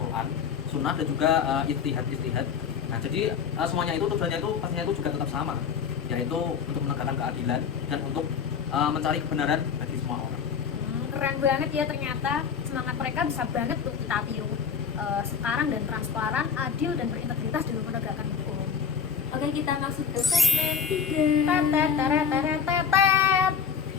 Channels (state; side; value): quieter; right; 6.8 dB